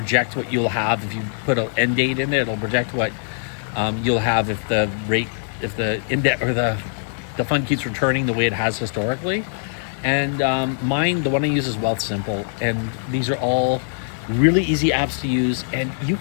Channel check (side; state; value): right; silent; digital silence